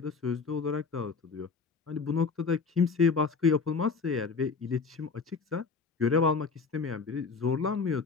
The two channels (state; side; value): quieter; right; 4.9 dB